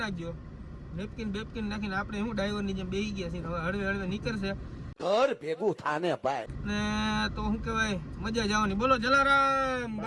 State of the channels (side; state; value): both; identical; correlation 1.00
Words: નાખજો. નેપકિન બેપકિન નાખીને આપણે શું ડ્રાઈવરની જેમ બેસી ગયા છીએ. હવે હળવે નીકળશે ઘર ભેગું થાને ભાઈ, ને તો શું કહેવાય મજા જવાની. બોલો જલારામ